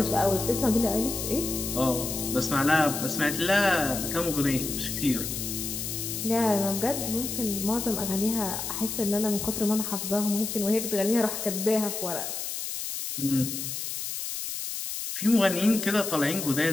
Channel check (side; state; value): left; noise; hiss, 5 dB below the sound